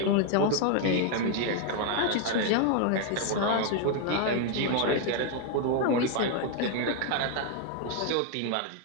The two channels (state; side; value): different; both; correlation 0.00